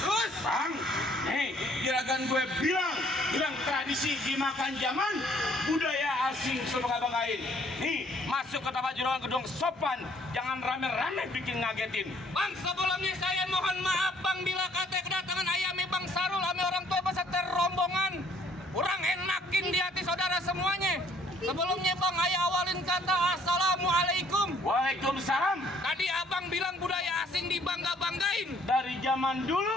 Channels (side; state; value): both; normal; correlation 0.61